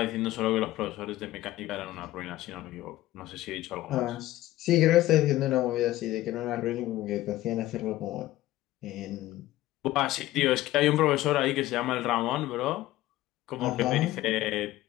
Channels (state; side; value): quieter; right; 16.0 dB